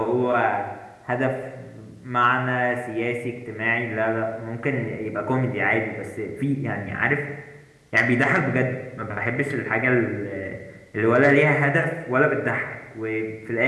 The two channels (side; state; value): both; identical; correlation 1.00